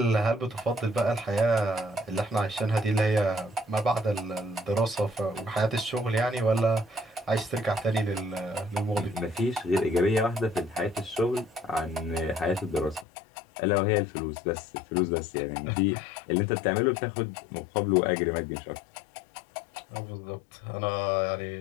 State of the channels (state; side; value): drops out; right; at 13.1 s